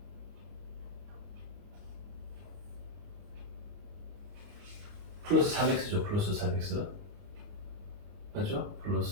플러스 3x죠. 플러스 3x 맞죠?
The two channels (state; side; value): late; left; 29 ms